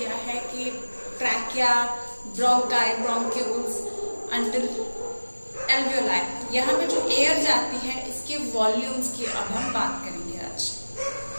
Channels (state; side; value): inverted; both; correlation -1.00